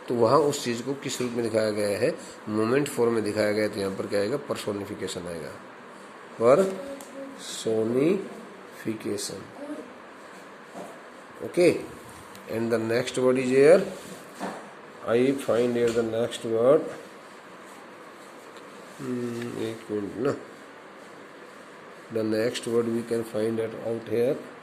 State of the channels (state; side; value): identical; both; correlation 1.00